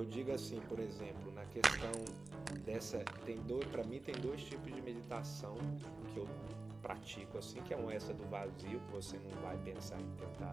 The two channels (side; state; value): left; quieter; 3.2 dB